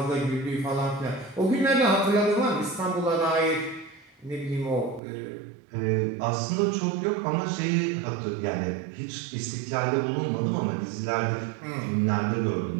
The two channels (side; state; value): left; drops out; at 5.0 s